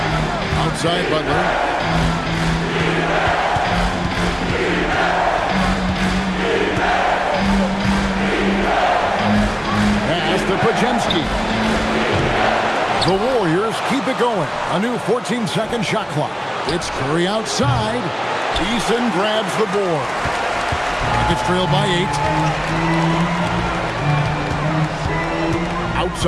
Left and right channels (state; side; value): identical; both; correlation 1.00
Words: Outside Butler. Pass to Podziemski. The Warriors keep it going. A new 14-second shot clock. It's Curry outside. Eason grabs the board. Rockets trailed by 8.